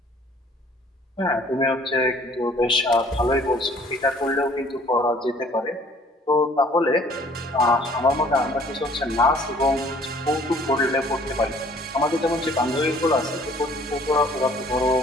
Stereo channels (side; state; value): both; normal; correlation 0.56